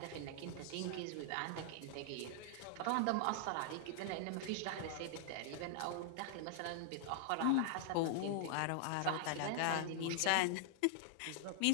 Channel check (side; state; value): both; different; correlation -0.01